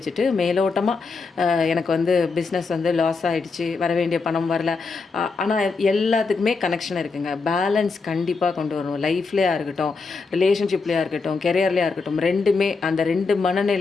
மேலோட்டமாக எனக்கு வந்து பிஸ்னஸ் வந்து லாஸ் ஆகிடுச்சு, வர வேண்டிய பணம் வரல. ஆனால் எல்லாத்துக்குமே கனெக்ஷன் இருக்குங்க. பேலன்ஸ் கண்டிப்பாக கொண்டு வரணும். லைஃப்லேயா இருக்கட்டும், ரிலேஷன்ஷிப்லேயா இருக்கட்டும், கெரியர்லேயா இருக்கட்டும், ரெண்டுமே அந்த ரெண்டு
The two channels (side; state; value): right; quieter; 4.4 dB